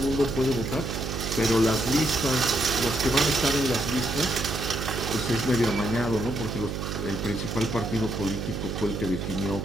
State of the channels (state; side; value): noise; right; hum, 4 dB below the sound